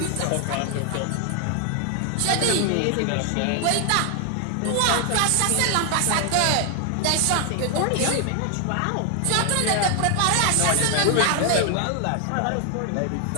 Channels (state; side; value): different; both; correlation 0.00